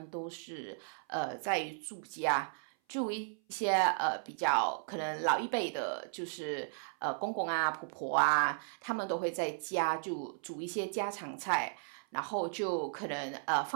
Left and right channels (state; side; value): silent; left; 54 dB below the other